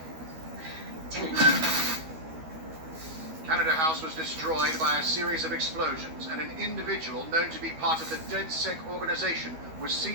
tell him. Canada House was destroyed by a series of explosions, and an individual known to be part of the Ded-Sec organization was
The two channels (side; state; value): left; late; 12 ms